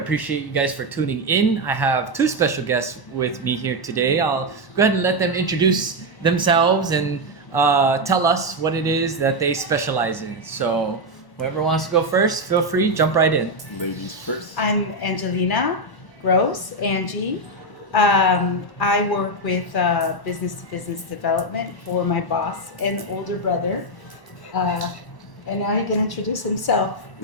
you guys for tuning in. I have two special guests with me here today. I'll go ahead and let them introduce themselves and tell us what it is that they specialize in. So whoever wants to go first, feel free, jump right in. Ladies first. I'm Angelina Gross, Angie. I work with business-to-business development for my boss and older brother. And now he can introduce himself.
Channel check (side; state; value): right; late; 1.0 ms